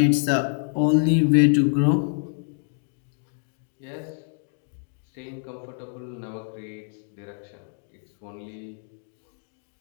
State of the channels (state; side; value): silent; right; 61 dB below the other